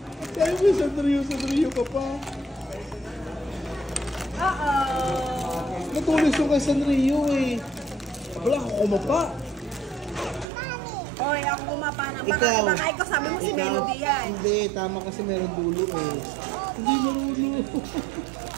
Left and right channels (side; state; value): left; drops out; at 10.5 s